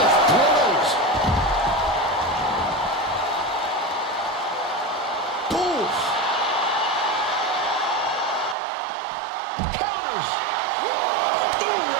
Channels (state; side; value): drops out; left; at 8.6 s